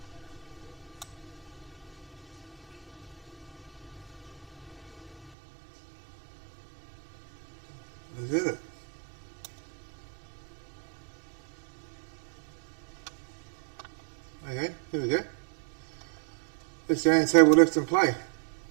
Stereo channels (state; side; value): drops out; left; at 5.3 s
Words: Is that it? Okay, here we go. It's the only table left in play.